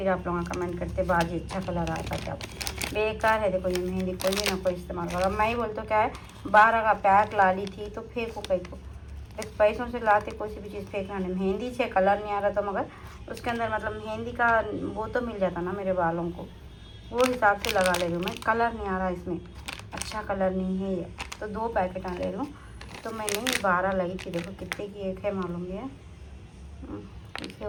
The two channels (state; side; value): identical; both; correlation 1.00